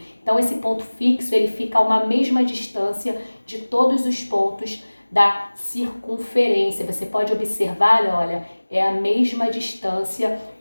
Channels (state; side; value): inverted; both; correlation -1.00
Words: Então, esse ponto fixo, ele fica a uma mesma distância de todos os pontos da circunferência. Você pode observar, olha, é a mesma distância